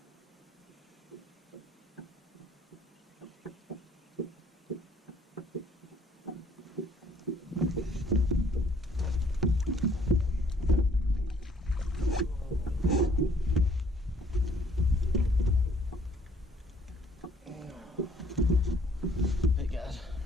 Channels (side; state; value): both; normal; correlation 0.61